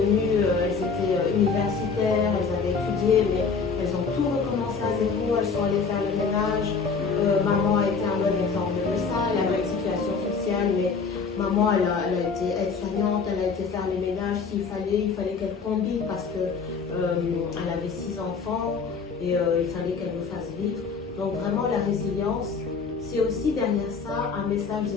elles étaient universitaires, elles avaient étudié, mais elles ont tout recommencé à zéro, elles sont allées faire le ménage. Maman a été un bon exemple de ça, elle avait une situation sociale, mais maman, elle a été aide-soignante, elle a été faire les ménages s'il fallait, il fallait qu'elle combine parce que elle avait 6 enfants et il fallait qu'elle nous fasse vivre. Donc vraiment la résilience, c'est aussi derrière ça un message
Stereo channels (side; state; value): right; quieter; 5.2 dB